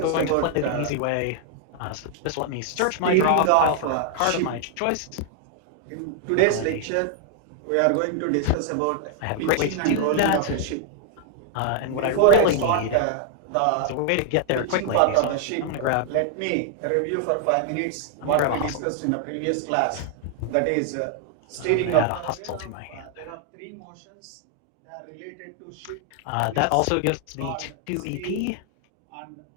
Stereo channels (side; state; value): both; different; correlation 0.00